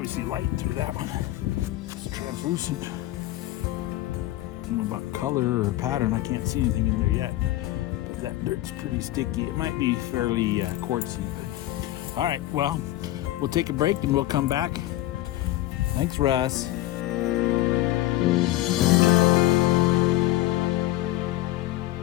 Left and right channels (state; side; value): quieter; right; 15.6 dB